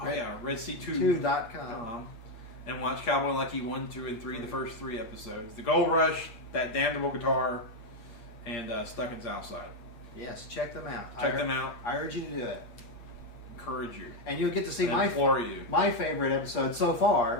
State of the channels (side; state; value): right; late; 8.6 ms